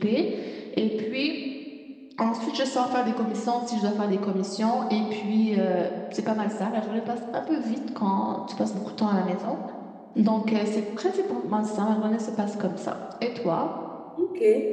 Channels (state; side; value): identical; both; correlation 1.00